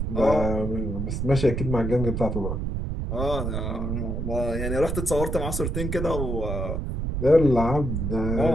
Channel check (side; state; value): right; noise; rumble, 2 dB below the sound